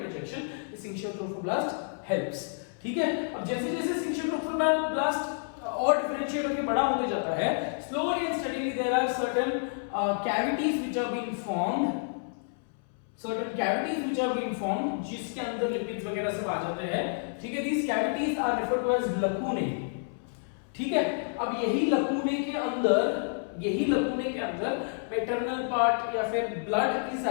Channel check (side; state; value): right; silent; 58 dB below the other